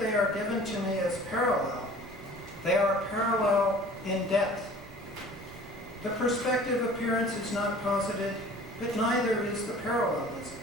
are given to me as parallel. They are parallel in depth. The perspective appearance is not posited, but neither is the parallelism.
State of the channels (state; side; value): noise; right; rumble, 19 dB below the sound